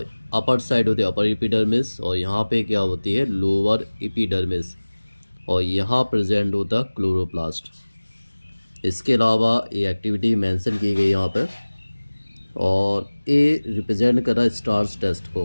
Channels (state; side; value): inverted; both; correlation -1.00